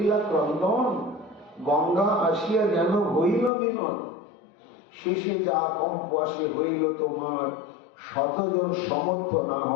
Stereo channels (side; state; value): right; drops out; at 3.5 s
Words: ক্রন্দন, গঙ্গা আসিয়া যেন হইল মিলন। শেষে যা কম্প আসে হইল তোমার, শতজন সমর্থ না